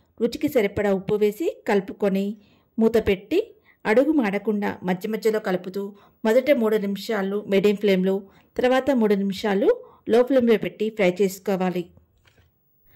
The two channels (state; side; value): identical; both; correlation 1.00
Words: రుచికి సరిపడా ఉప్పు వేసి కలుపుకొని మూత పెట్టి అడుగు మాడకుండా మధ్య మధ్యలో కలుపుతూ మొదట 3 నిమిషాలు మీడియం ఫ్లేమ్లో, తర్వాత 3 నిమిషాలు లో ఫ్లేమ్లో పెట్టి ఫ్రై చేసుకోవాలి.